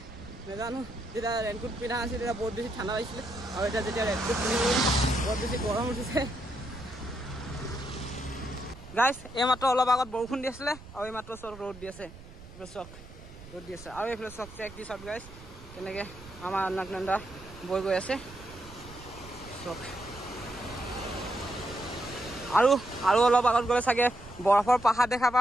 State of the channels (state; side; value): noise; right; rumble, 17 dB below the sound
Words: নাজানো। যেতিয়া ৰেইনকোট পিন্ধা আছিল তেতিয়া বহুত বেছি ঠাণ্ডা লাগিছিলে, আৰু এতিয়া যেতিয়া ৰেইনকোট পিন্ধিব বহুত বেছি গৰম উঠিছে। গাইজ এইমাত্ৰ অলপ আগত বৰষুণ দি আছিলে, আৰু এইমাত্ৰ চব ৰ'দ দি আছে, চক ৰ'দ দি আছে। আৰু এইফালে চক চেক দি চব গাইজ কেনেকৈ আমাৰ অলকনন্দা বৈ গৈ আছে চক। আৰু অলপ আগত গ'লে চাগে বৰফৰ পাহাৰ দেখা